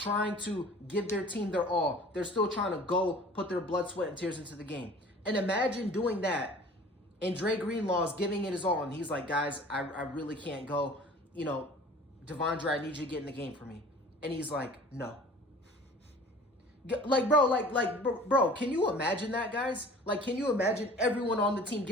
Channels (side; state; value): both; normal; correlation 0.46